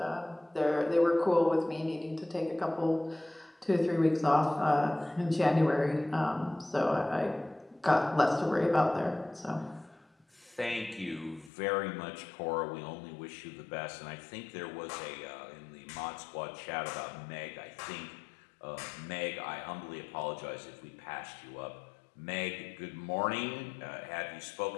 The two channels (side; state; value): right; drops out; at 11.5 s